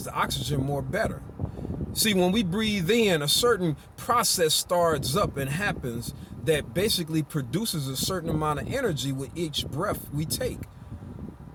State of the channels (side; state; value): both; identical; correlation 1.00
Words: the oxygen more better. See, when we breathe in, a certain process starts up and happens that basically produces a certain amount of energy with each breath we take.